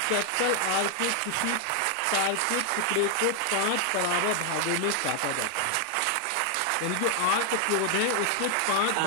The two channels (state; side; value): different; both; correlation 0.00